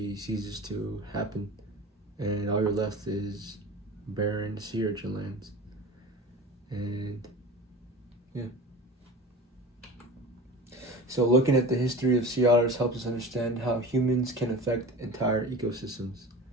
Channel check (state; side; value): normal; both; correlation 0.36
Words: ceases to happen, and all you're left is barren sea urchin lands. And yeah. So looking at the history of sea otters helps us understand how humans can affect entire ecosystems.